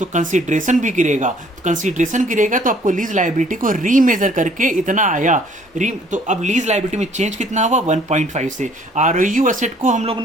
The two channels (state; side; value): normal; both; correlation 0.59